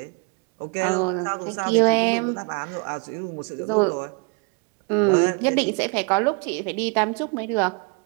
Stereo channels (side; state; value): left; quieter; 33.8 dB